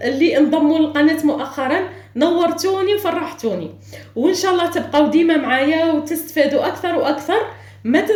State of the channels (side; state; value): both; identical; correlation 1.00